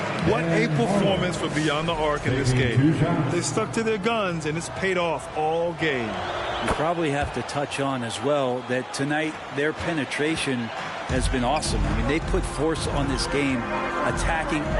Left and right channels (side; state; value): both; identical; correlation 1.00